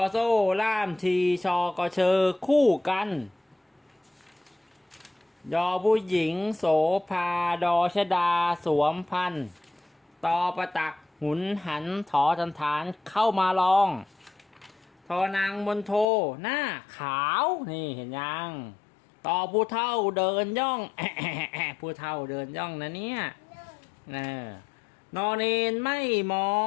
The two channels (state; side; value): drops out; right; at 16.1 s